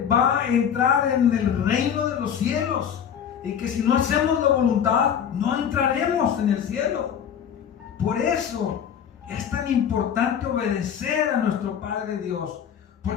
va a entrar en el reino de los cielos, y que si no hacemos la voluntad no entraremos en el cielo. Por eso es tan importante obedecer a nuestro Padre Dios,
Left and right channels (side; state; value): right; quieter; 8.4 dB